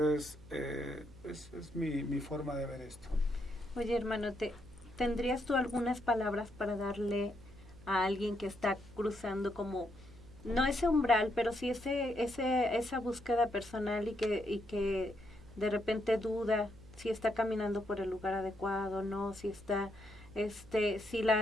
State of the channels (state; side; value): noise; right; hum, 21 dB below the sound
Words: es mi forma de ver esto. Oye, hermano, ¿tendrías tú algunas palabras para darle a alguien que está cruzando como, no ese umbral, pero sí esa búsqueda personal y que de repente duda si está caminando por el lugar adecuado, no, si está, si